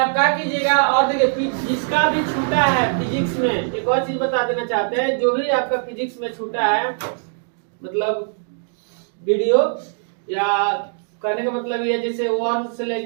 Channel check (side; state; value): left; silent; digital silence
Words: क्या कीजिएगा, और देखिए जिसका भी छूटा है फिजिक्स में, एक और चीज बता देना चाहते हैं, जो भी आपका फिजिक्स में छूटा है, मतलब वीडियो या करने का मतलब ये जैसे 1 से